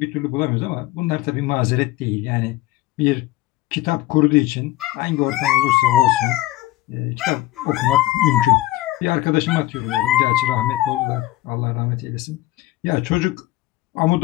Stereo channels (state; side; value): quieter; right; 17.0 dB